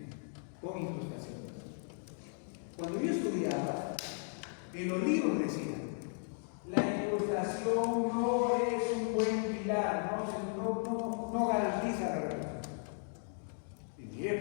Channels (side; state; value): right; silent; 54 dB below the other